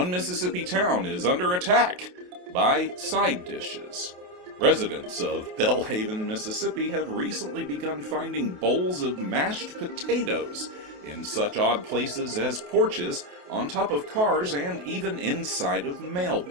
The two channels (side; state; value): left; late; 28 ms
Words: Mississippi town is under attack by side dishes. Residents of Belhaven, Mississippi have recently begun finding bowls of mashed potatoes in such odd places as porches, on top of cars, and even inside of